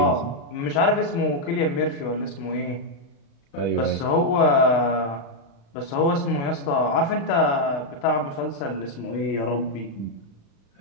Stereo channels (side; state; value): right; late; 36 ms